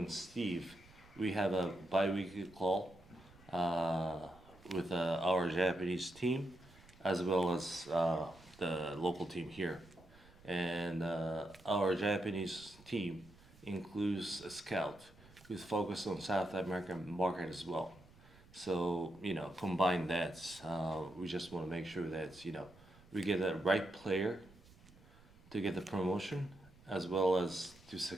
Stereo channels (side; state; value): right; noise; rumble, 24 dB below the sound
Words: Steve, we have a bi-weekly call with our Japanese team, as well as the local team here. And our Japanese team includes a scout who's focused on South American market as well. So combine that. We just want to make sure that we get the right player to get the promotion, as well as to